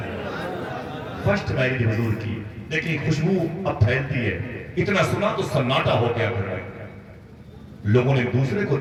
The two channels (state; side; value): identical; both; correlation 1.00